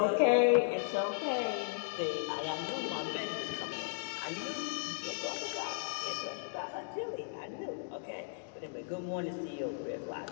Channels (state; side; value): silent; right; digital silence